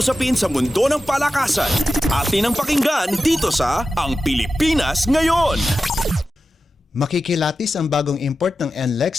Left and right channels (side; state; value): both; normal; correlation 0.92